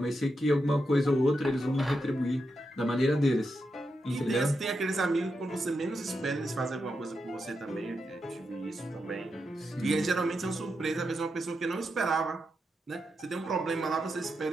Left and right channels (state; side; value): normal; both; correlation 0.86